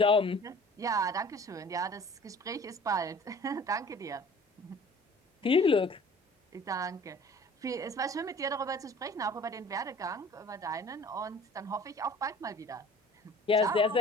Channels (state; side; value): normal; both; correlation 0.48